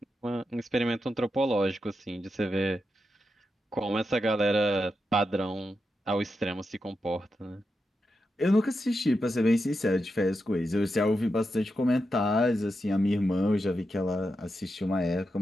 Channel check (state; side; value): normal; both; correlation 0.87